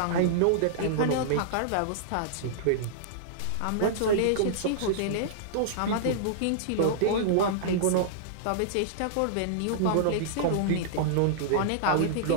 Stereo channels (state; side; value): different; both; correlation -0.02